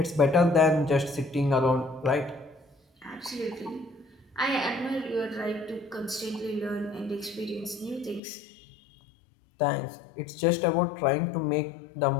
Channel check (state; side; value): drops out; right; at 8.2 s